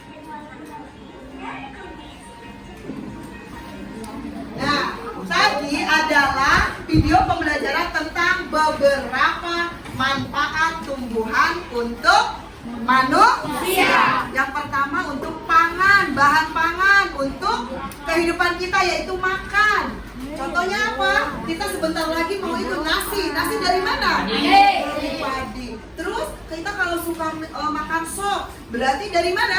dan warna kuning dari kumis. Nah, tadi adalah video pembelajaran tentang beberapa manfaat tumbuhan untuk manusia. Yang pertama untuk pangan, bahan pangan untuk kehidupan kita yaitu makan. Contohnya apa? Kita sebentar lagi mau itu nasi. Nasi dari mana? Dari padi. Terus kita kalau suka makan sop, berarti dari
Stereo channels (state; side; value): identical; both; correlation 1.00